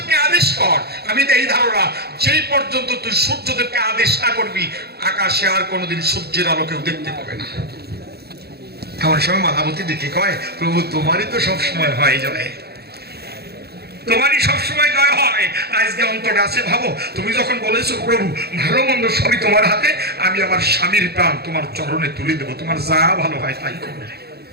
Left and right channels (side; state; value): left; late; 0.46 ms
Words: আদেশ কর, আমি এই ধারণা যেই পর্যন্ত তুই সূর্যদেবকে আদেশ না করবি আকাশে আর কোনোদিন সূর্যের আলো কেউ দেখতে পাবে না। এমন সময় মালাবতী দেখে কয় প্রভু তোমারই তো সব সময় হয় যায়। তোমারই সবসময় জয় হয়। আজকে অন্তরে আছে ভাবো, তুমি যখন বলেছো প্রভু ভালো মন্দ সবই তোমার হাতে, আমি আমার স্বামীর প্রাণ তোমার চরণে তুলে দেবো, তোমার যা ভালো হয় তাই করবে।